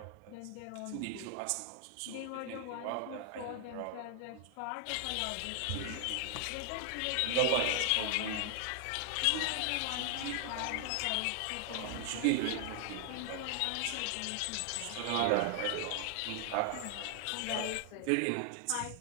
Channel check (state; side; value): different; both; correlation 0.00